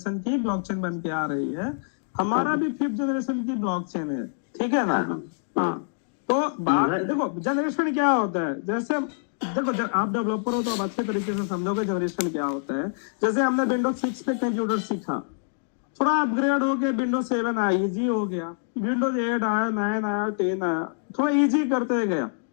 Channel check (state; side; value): silent; right; digital silence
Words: की ब्लॉकचेन बन के आ रही है। हमारा भी 5th जनरेशन की ब्लॉकचेन है, ठीक है ना? हाँ, तो बात देखो जनरेशन क्या होता है, जैसे देखो आप डेवलपर हो तो आप अच्छे तरीके से समझोगे जनरेशन क्या होता है। जैसे हमने विंडोज 6 पे कंप्यूटर सीखा, थोड़ा अपग्रेड हो गया, विंडोज 7 आया, इजी हो गया, विंडोज 8 आया, 9 आया, 10 आया, थोड़ा इजी करते गया।